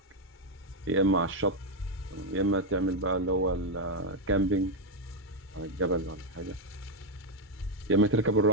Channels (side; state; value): both; normal; correlation 0.04